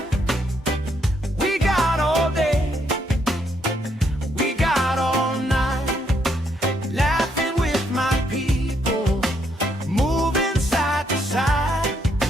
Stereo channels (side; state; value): both; normal; correlation 0.74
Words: We got all day, we got all night, laughing with my people, moving